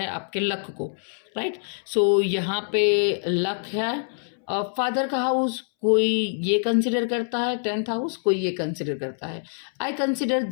आपके लक को, राइट। सो यहाँ पे लक है। फादर का हाउस कोई ये कंसिडर करता है, टेंथ हाउस कोई ये कंसिडर करता है। I consider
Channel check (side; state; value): right; silent; 62 dB below the other